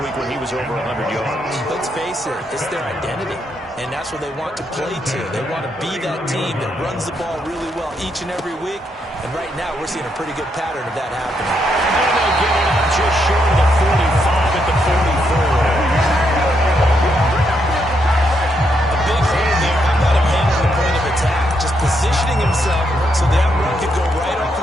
week when he was over 100 yards. Let's face it, it's their identity, and that's what they want to play to. They want to be that team that runs the ball really well each and every week, and right now we're seeing a pretty good pattern of that happening. And they'll get it up just short of the 45 at the 44. A big hole there. How about him handling the point of attack? Just positioning himself so that run could go right off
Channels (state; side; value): normal; both; correlation 0.78